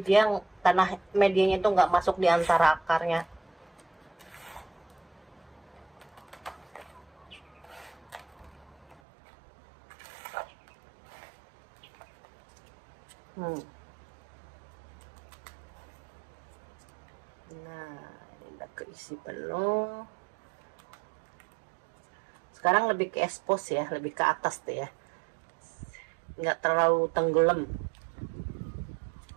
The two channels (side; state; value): left; drops out; at 9.0 s